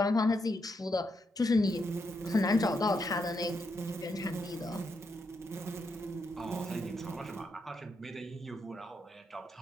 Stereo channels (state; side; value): normal; both; correlation 0.81